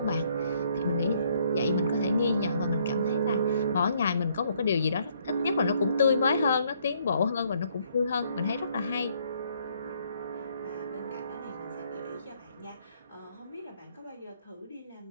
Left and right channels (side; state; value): both; inverted; correlation -0.68